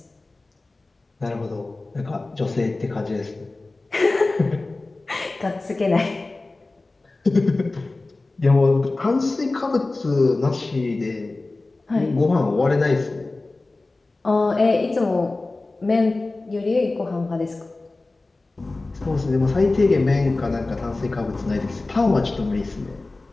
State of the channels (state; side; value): quieter; right; 3.2 dB